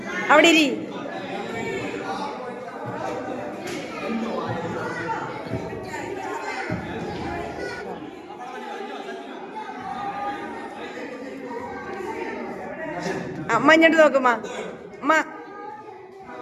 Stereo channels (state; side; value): identical; both; correlation 1.00